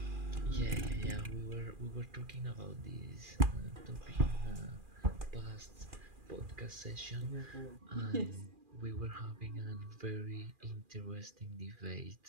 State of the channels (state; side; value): late; left; 2.4 ms